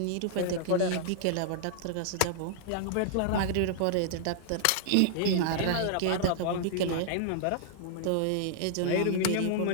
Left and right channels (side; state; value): both; different; correlation -0.01